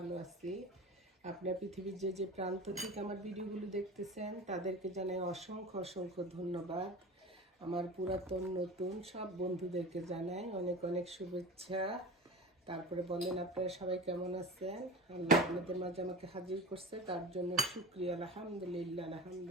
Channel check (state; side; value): normal; both; correlation 0.32